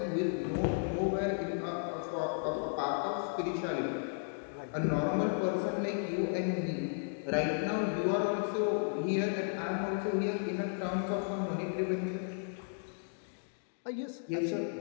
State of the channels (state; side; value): silent; right; digital silence